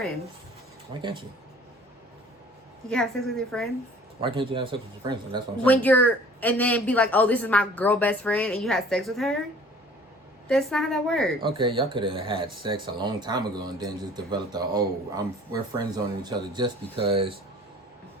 Why can't you? You can have sex with your friends Why can't you have sex with your friends? That's what I'm when saying. and then be like, oh, this is my girl best friend, and you have sex with her. That's not how that works. Okay, y'all could have had sex a long time ago and then just developed we're friends on each other just because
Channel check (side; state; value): both; normal; correlation 0.50